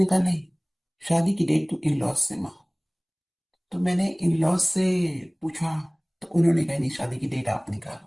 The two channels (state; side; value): identical; both; correlation 1.00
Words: कहा नहीं, शादी की डेट तो इन लॉज से मांगो। तो मैंने इन लॉज से पूछा, तो उन्होंने कहा नहीं, शादी की डेट आप निकालो।